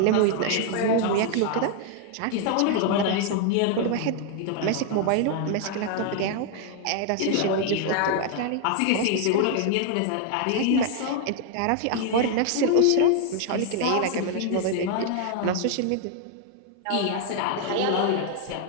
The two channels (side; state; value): both; different; correlation 0.00